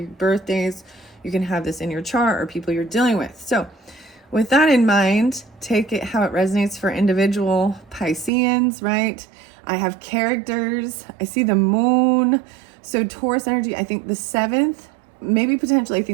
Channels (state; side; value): drops out; left; at 8.3 s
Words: birthdays. You can have this in your chart or people you're dealing with. So with that in mind, take it how it resonates for individual Pisceans, right? I have characters. I see the moon. So Taurus energy, I think the 7th, maybe potentially, I